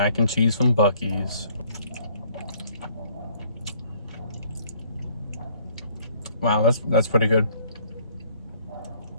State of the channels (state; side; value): inverted; both; correlation -0.61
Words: and cheese from Buc-ee's. Wow, that's pretty good.